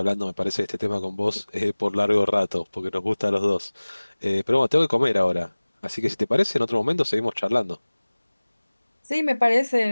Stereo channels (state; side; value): inverted; both; correlation -1.00